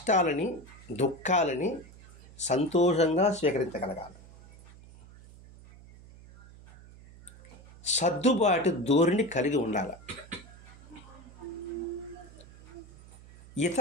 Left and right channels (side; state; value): right; noise; hum, 20 dB below the sound